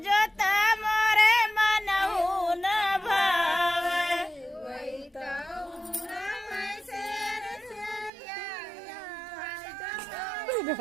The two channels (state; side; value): drops out; left; at 8.1 s